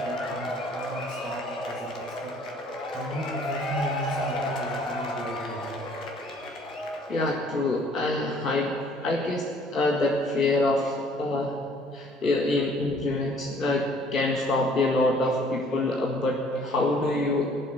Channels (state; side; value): normal; both; correlation 0.58